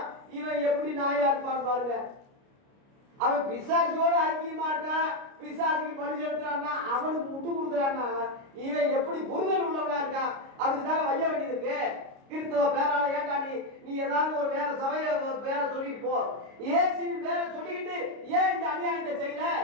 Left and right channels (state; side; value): late; left; 29 ms